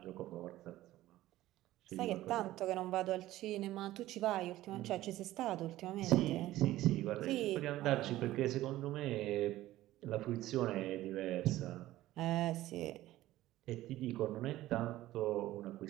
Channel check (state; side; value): quieter; left; 15.5 dB